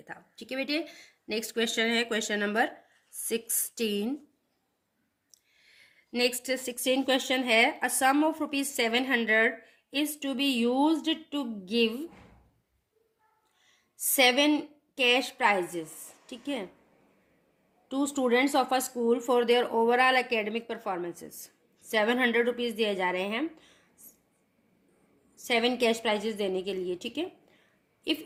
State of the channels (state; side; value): identical; both; correlation 1.00